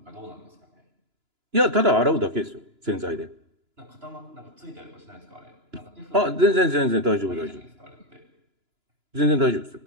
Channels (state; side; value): late; left; 2.9 ms